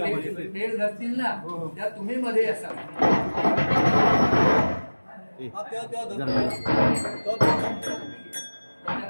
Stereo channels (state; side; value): inverted; both; correlation -1.00